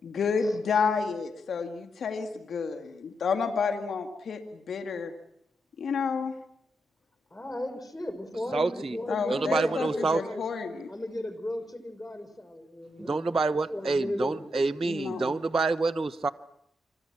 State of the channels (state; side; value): normal; both; correlation 0.82